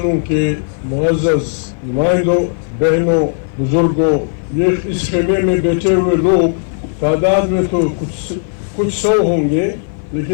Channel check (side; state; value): right; silent; 56 dB below the other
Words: के मुअज़्ज़ज़ नुमाइंदों, बहनों, बुजुर्गों, ये इस खेमे में बैठे हुए लोग तादाद में तो कुछ सौ होंगे,